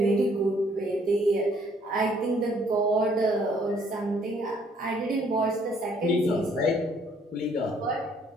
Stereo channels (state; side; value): normal; both; correlation 0.64